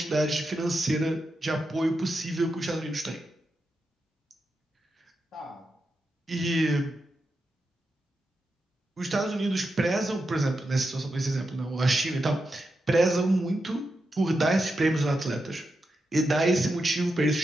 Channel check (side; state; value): both; normal; correlation 0.87